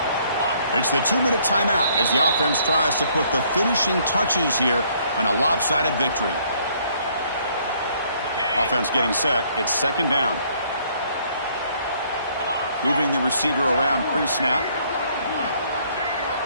It's the 2-minute timeout as the offense tries to put the finishing touches here on a lopsided victory. Offense getting set. It's second down. Moving the receiver around pre-snap.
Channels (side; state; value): both; inverted; correlation -0.64